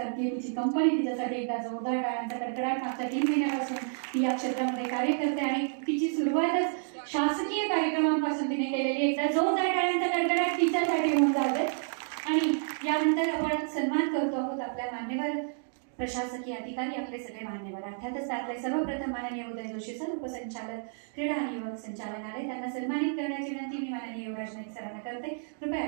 तिची कंपनी तिच्यासाठी एकदा जोरदार टाळ्यांचा कडकडाट मागच्या 3 महिन्यापासून ती या क्षेत्रामध्ये कार्य करते आणि तिची सुरुवातच शासकीय कार्यक्रमांपासून तिने केलेली. एकदा जोरदार टाळ्यांचा कडकडाट तिच्यासाठी होऊन जाते. आणि यानंतर आपण सन्मान करतो आहोत आपल्या मान्यवर प्रशासकीय अधिकारी, आपले सगळे मान्यवर, अर्थातच त्यातले सर्वप्रथम माननीय उदय जोशी सर, उपसंचालक क्रीडा आणि युवक संचालनालय, त्यांना सन्मानित करण्याची विनंती मी माननीय युवराज नाईक सरांना करते. कृपया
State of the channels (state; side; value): silent; left; digital silence